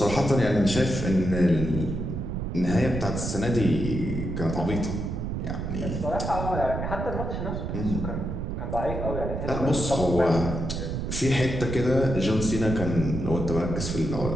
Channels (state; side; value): noise; right; rumble, 4 dB below the sound